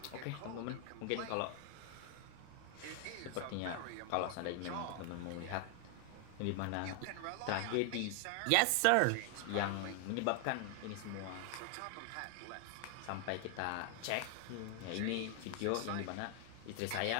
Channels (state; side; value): different; both; correlation 0.00